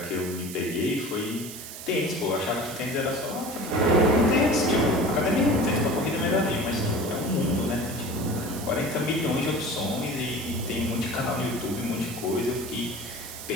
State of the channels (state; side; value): noise; right; hiss, 11 dB below the sound